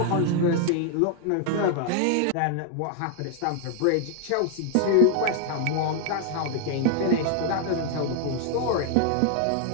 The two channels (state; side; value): different; both; correlation 0.00